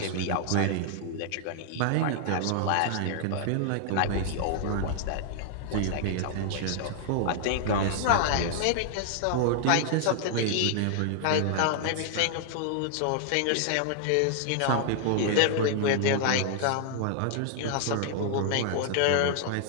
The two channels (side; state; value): both; different; correlation -0.01